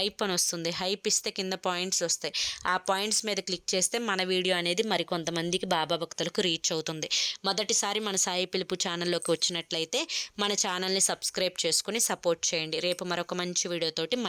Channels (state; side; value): identical; both; correlation 1.00